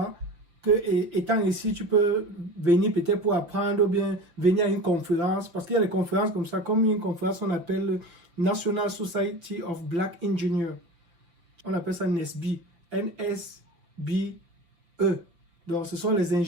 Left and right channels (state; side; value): late; left; 5.9 ms